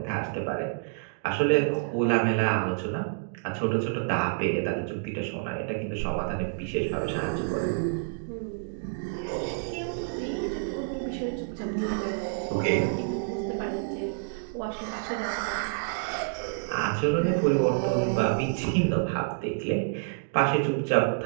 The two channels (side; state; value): left; silent; digital silence